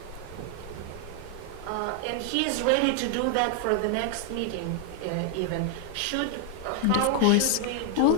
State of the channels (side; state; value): both; different; correlation 0.00